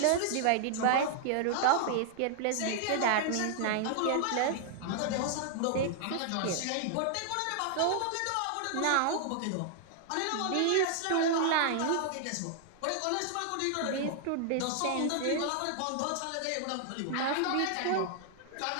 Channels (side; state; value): both; different; correlation -0.01